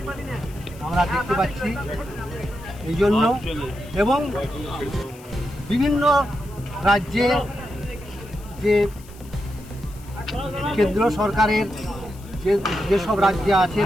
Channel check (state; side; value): noise; left; hiss, 23 dB below the sound